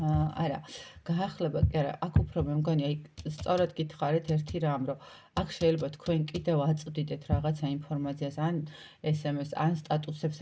გაახლება კი არა, აქ უფრო მე მგონი, აი სწორად გითხარით ერთი რამ, რომ აქ შეიძლება თქვენ კიდევ აწვდიდეთ რაღაცა ინფორმაციას, ან SMS, ან სტატუსებს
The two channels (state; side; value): identical; both; correlation 1.00